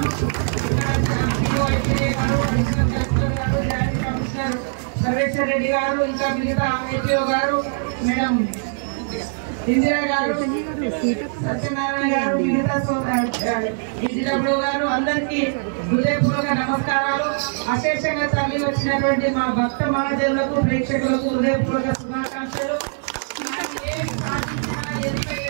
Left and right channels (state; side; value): silent; left; digital silence